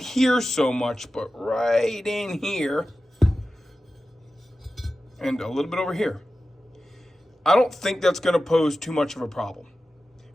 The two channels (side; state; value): both; normal; correlation 0.94